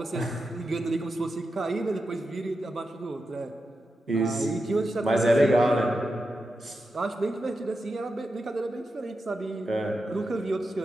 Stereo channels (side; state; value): both; normal; correlation 0.89